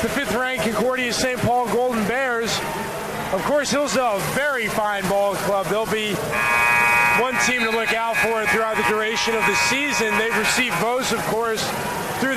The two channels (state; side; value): identical; both; correlation 1.00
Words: the 5th-ranked Concordia St. Paul Golden Bears. Of course, Hillsdale, a very fine ball club. They'll be one team to look out for throughout the duration of the season. They've received votes, of course, through